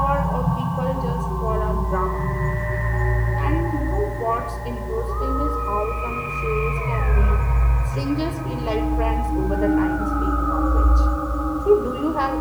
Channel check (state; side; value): identical; both; correlation 1.00